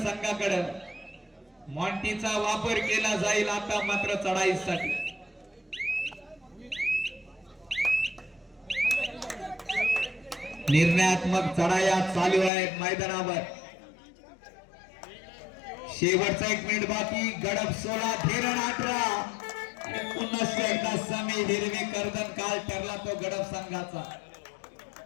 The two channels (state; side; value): drops out; right; at 12.5 s